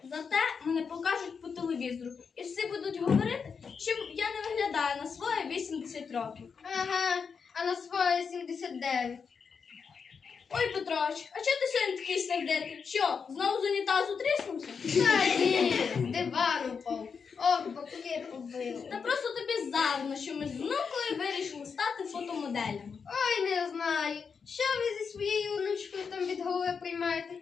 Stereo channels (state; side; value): quieter; right; 5.9 dB